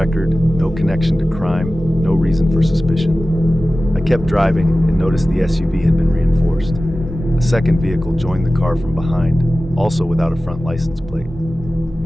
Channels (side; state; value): both; normal; correlation 0.96